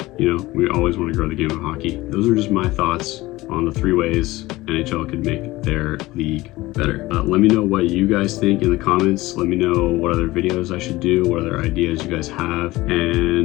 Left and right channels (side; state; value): right; quieter; 19.0 dB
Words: You know, we always want to grow the game of hockey. Those are just my thoughts on the 3 ways NHL could make their league better. Let me know what you guys think in the comments. Let me know what other videos I should do, what other ideas you guys have.